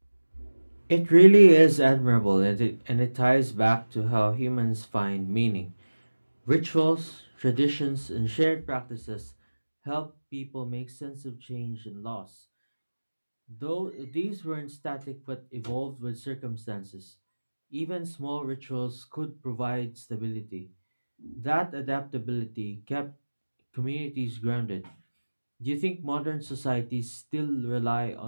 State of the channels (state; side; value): inverted; both; correlation -1.00